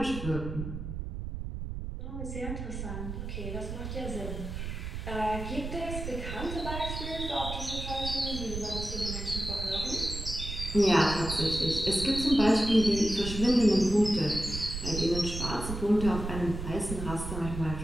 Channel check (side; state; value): right; noise; rumble, 6 dB below the sound